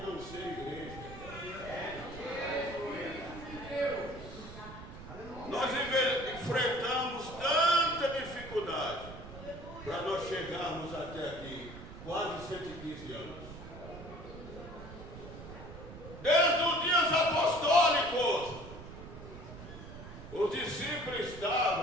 não ser igreja. Nós enfrentamos tanta dificuldade para nós chegarmos até aqui, quase 115 anos. Desde os dias apostólicos, os discípulos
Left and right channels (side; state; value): right; noise; rumble, 13 dB below the sound